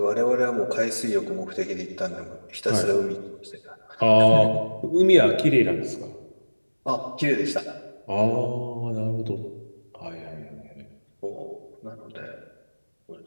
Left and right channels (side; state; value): both; inverted; correlation -1.00